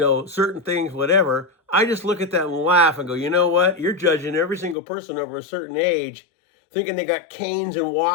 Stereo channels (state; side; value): drops out; right; at 4.8 s